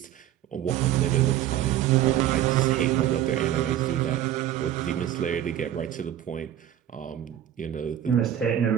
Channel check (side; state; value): left; quieter; 11.5 dB